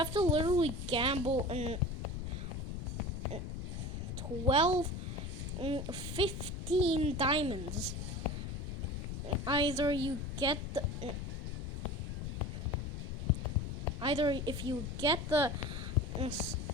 to literally gamble in 12, 15 diamonds. Either if you get the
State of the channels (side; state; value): left; noise; rumble, 5 dB below the sound